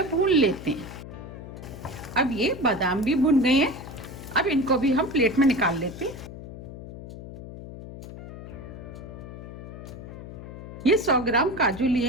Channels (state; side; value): noise; left; hum, 12 dB below the sound